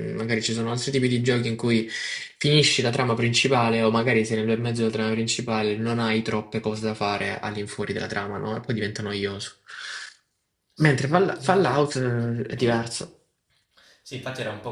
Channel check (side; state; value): both; identical; correlation 1.00